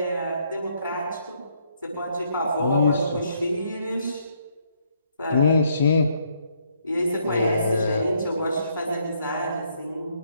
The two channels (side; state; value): both; inverted; correlation -0.71